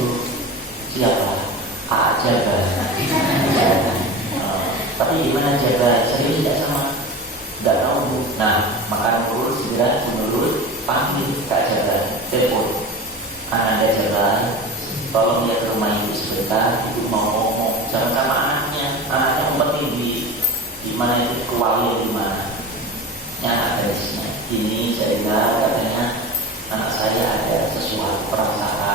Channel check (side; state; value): both; normal; correlation 0.30